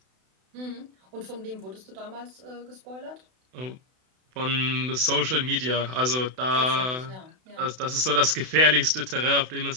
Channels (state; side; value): late; left; 32 ms